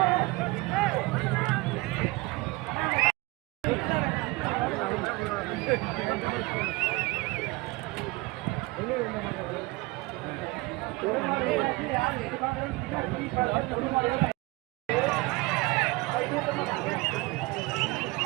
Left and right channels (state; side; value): quieter; left; 22.9 dB